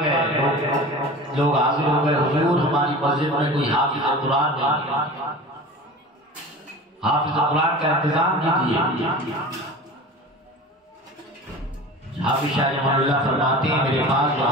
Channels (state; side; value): normal; both; correlation 0.36